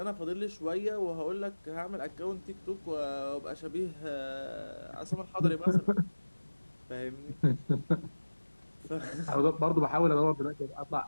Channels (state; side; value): inverted; both; correlation -1.00